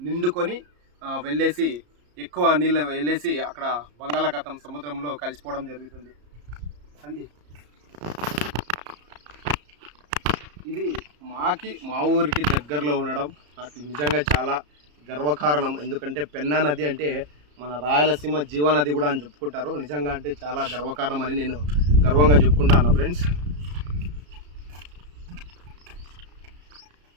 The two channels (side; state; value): left; late; 34 ms